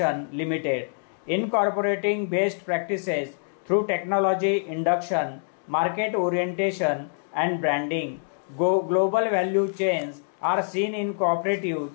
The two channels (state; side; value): silent; right; digital silence